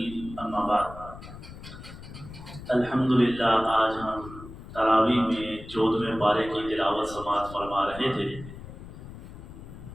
اما بعد۔ الحمد للہ آج ہم تراویح میں 14ویں پارے کی تلاوت سماعت فرما رہے تھے۔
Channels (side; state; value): left; noise; rumble, 14 dB below the sound